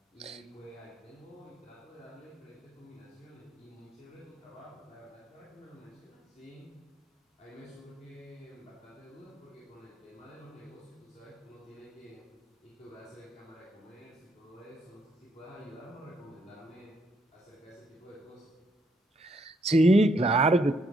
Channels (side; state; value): both; normal; correlation 0.72